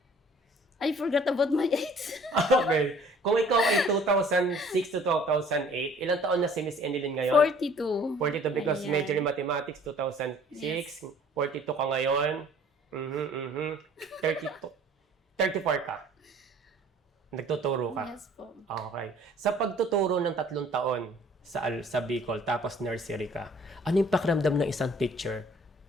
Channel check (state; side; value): normal; both; correlation 0.53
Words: I forgot about my age. Okay. Kung ikaw ay 2006 to 2008, ilang taon na si Miss Anilyn ngayon? 42. 42 because Ayan. major in mathematics 2006, Yes. 42 ka ngayon. 32. 34 ka. Nagtuturo ka. Yes po. Okay. Sa pagtuturo ng 3 taon sa Bicol, tapos nursery ka, ano yung pakiramdam ng isang teacher